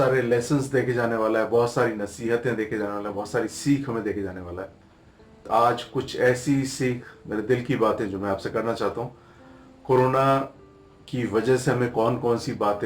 लेसन्स देके जाने वाला है, बहुत सारी नसीहतें देके जाने वाला है, बहुत सारी सीख हमें देके जाने वाला है। तो आज कुछ ऐसी सीख, मेरे दिल की बातें जो मैं आपसे करना चाहता हूँ। कोरोना की वजह से हमें कौन कौन सी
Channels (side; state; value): both; identical; correlation 1.00